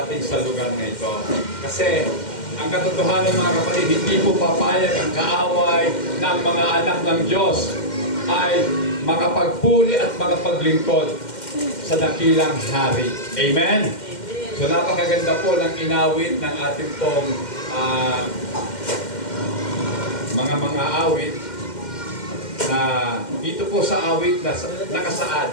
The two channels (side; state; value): right; late; 2.1 ms